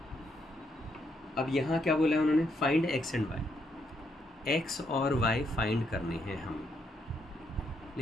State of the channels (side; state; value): both; normal; correlation 0.76